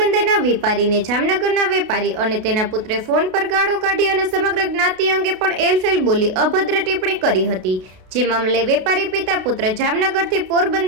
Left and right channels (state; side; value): late; left; 32 ms